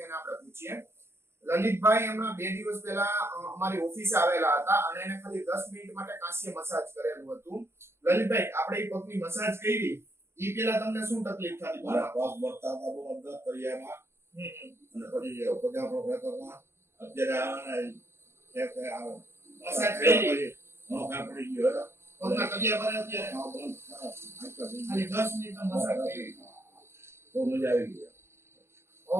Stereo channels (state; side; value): late; left; 0.12 ms